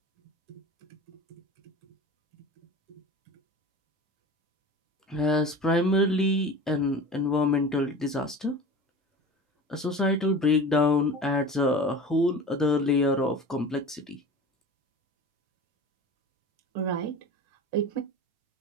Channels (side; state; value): both; normal; correlation 0.35